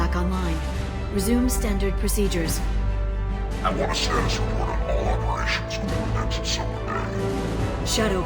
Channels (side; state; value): both; identical; correlation 1.00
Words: online. Resume standard procedures. I want a status report on all operations within the next solar day. Shadow